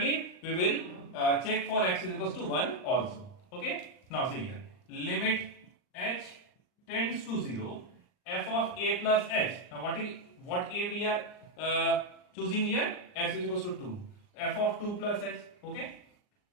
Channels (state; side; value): late; right; 39 ms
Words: we will check for x is equals to 1 also. Okay, now see here, limit h tends to 0, f of a plus h. Now what a we are choosing here? X is equals to 2, f of 2 plus h. Okay,